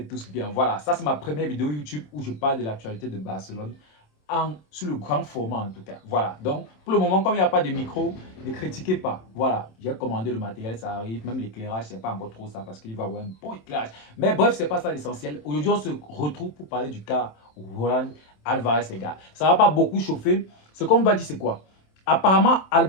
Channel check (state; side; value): late; right; 27 ms